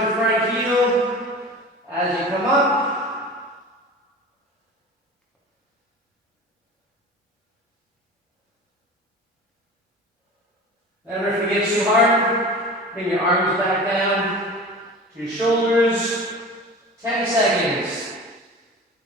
your front heel as you come up. Remember, if it gets too hard, bring your arms back down to your shoulders. 10 seconds.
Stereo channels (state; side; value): normal; both; correlation 0.36